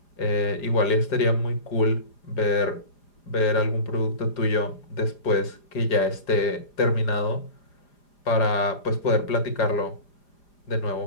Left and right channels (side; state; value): right; late; 4.9 ms